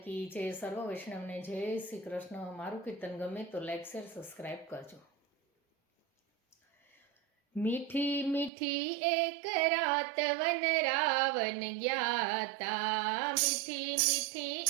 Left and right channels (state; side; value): drops out; left; at 8.5 s